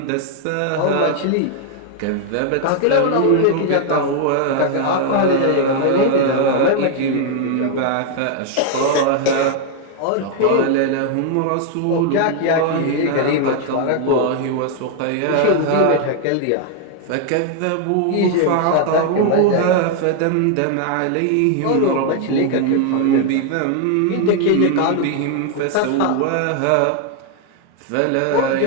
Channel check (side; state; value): both; different; correlation 0.00